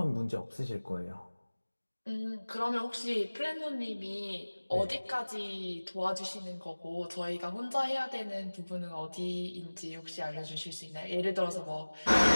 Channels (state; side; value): inverted; both; correlation -1.00